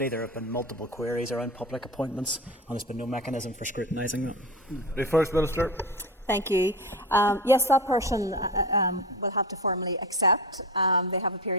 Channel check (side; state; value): both; normal; correlation 0.26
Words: there have been multiple queries around public appointments, and there's been no mechanism for scrutinising them. The First Minister. Thank you. Yes, that person will have to formally accept. They have a